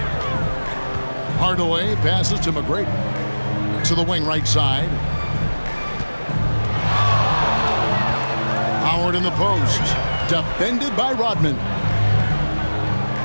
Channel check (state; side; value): inverted; both; correlation -1.00